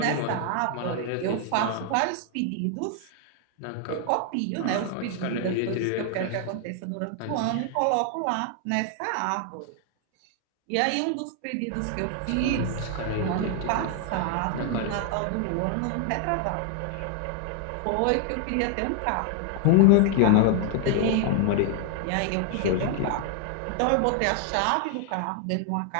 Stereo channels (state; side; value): different; both; correlation 0.00